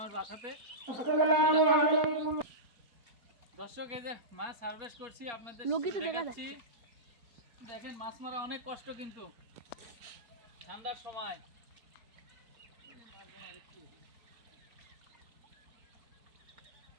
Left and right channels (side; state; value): left; late; 4.3 ms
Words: বাসাতে। দর্শক, এই যে মাছ হারভেস্ট করছি, আপনাদের দেখাচ্ছি। দেখেন, মাছ মারা অনেক কষ্ট, কিন্তু ঠান্ডার সময়।